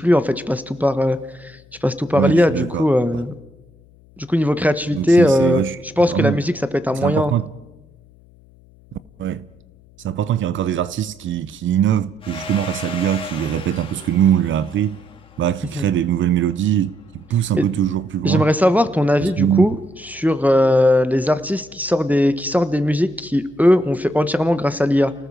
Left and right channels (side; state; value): left; noise; hum, 27 dB below the sound